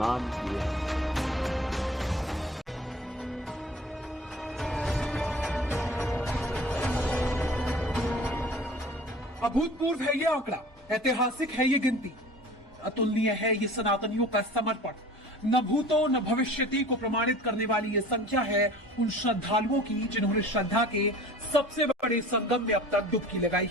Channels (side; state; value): both; normal; correlation 0.44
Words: किए। अभूतपूर्व है ये आंकड़ा, ऐतिहासिक है ये गिनती, अतुलनीय है ये सनातनियों का समर्पण। न भूतो न भविष्यति को प्रमाणित करने वाली ये संख्या है उन श्रद्धालुओं की जिन्होंने श्रद्धा के सबसे बड़े संगम में अब तक डुबकी लगाई